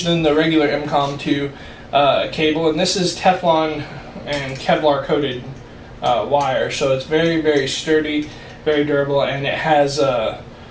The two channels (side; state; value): both; identical; correlation 1.00